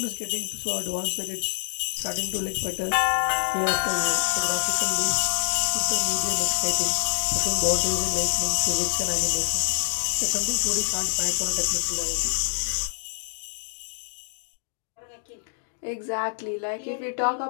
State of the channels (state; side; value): silent; right; digital silence